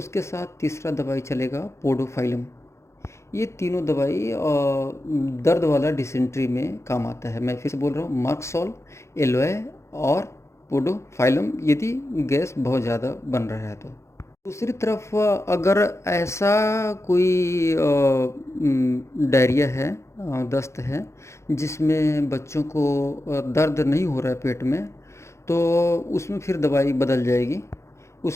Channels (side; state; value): right; late; 0.14 ms